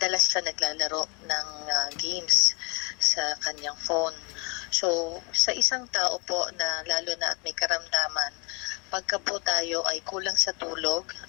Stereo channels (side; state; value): right; quieter; 32.1 dB